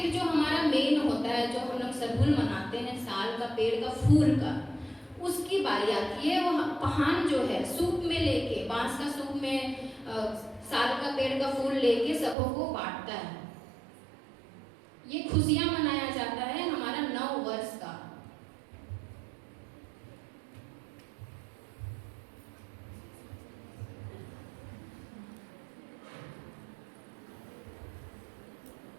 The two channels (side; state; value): left; drops out; at 12.4 s